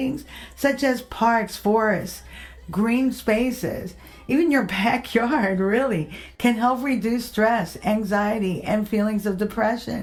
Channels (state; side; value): identical; both; correlation 1.00